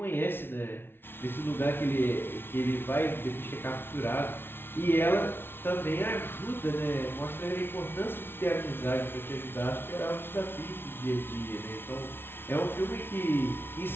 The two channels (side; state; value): right; late; 0.11 ms